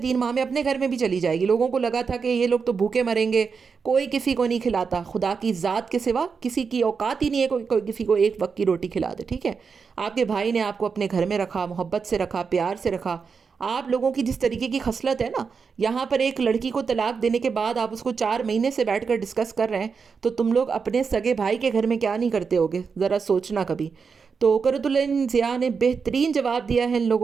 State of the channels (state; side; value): quieter; left; 5.5 dB